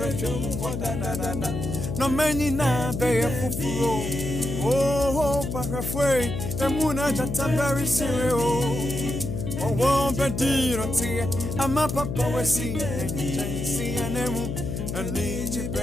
No many na be for fro. Oh, parafway, the moon at the very serious. Oh, won't be dear, I'm a papa, we see an emu, and need you,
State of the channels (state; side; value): noise; left; hum, 4 dB below the sound